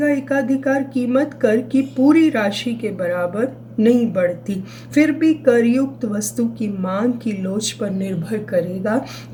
एकाधिकार कीमत कर की पूरी राशि के बराबर नहीं बढ़ती. फिर भी करयुक्त वस्तु की मांग की लोच पर निर्भर करेगा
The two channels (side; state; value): both; identical; correlation 1.00